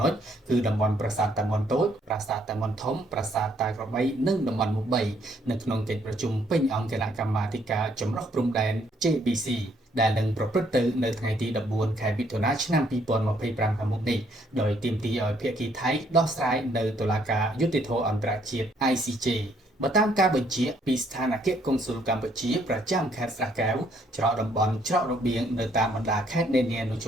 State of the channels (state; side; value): normal; both; correlation 0.68